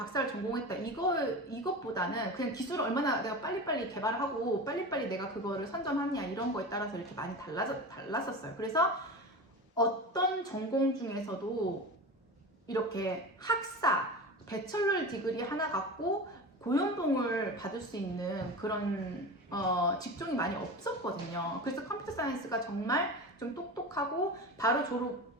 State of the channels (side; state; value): both; normal; correlation 0.29